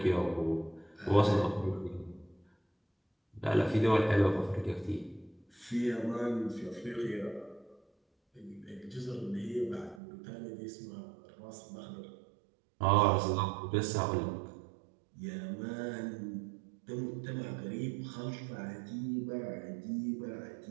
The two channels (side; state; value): left; drops out; at 10.0 s